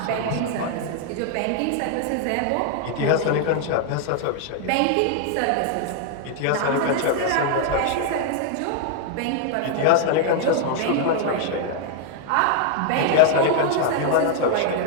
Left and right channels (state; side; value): different; both; correlation 0.00